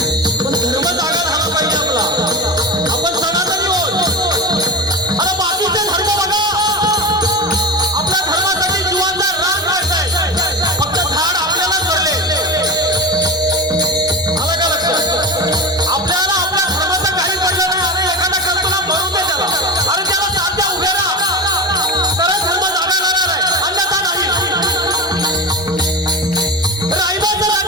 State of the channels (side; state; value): both; normal; correlation 0.24